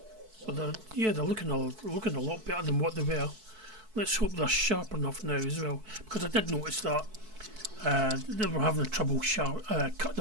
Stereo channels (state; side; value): late; left; 4.6 ms